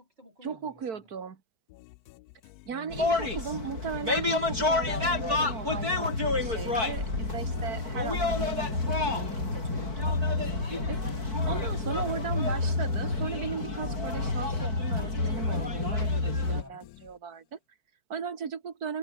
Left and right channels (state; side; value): late; left; 4.5 ms